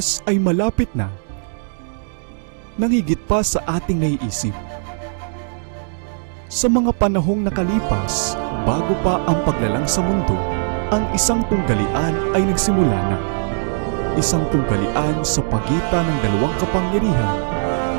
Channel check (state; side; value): silent; left; digital silence